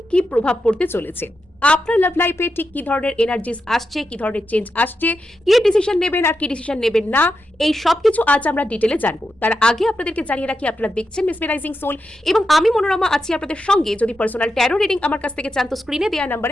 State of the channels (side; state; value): both; normal; correlation 0.87